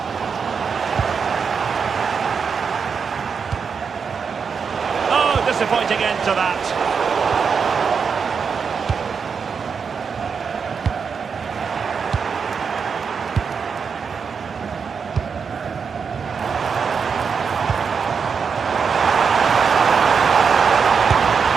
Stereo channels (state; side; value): quieter; left; 6.0 dB